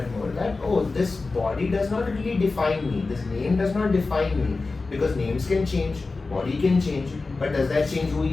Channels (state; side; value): quieter; right; 3.8 dB